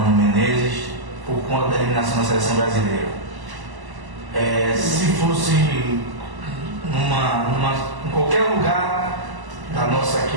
Menezes por conta da eliminação da seleção brasileira. Se fosse em qualquer lugar da nossa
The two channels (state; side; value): late; left; 1.0 ms